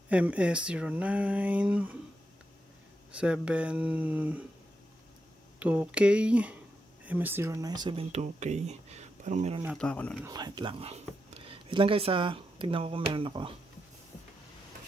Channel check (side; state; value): both; normal; correlation 0.86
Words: MS09 72K MS09 72K. Parang meron nata ako nun. Wait lang guys ha. Tignan ko kung meron ako.